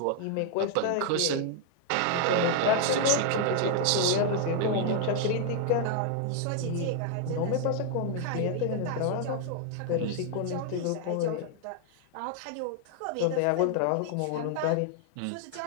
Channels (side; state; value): both; different; correlation 0.00